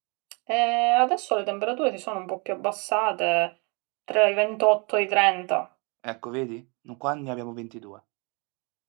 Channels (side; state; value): left; quieter; 31.5 dB